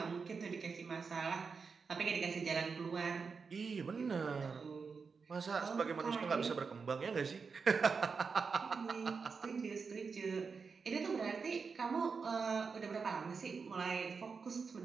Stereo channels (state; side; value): quieter; left; 5.2 dB